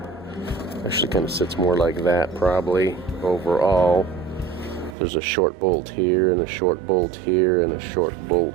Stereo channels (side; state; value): left; drops out; at 5.0 s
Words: Actually kind of sits more like that probably overall. There's a short bolt here, and a short bolt here, and a short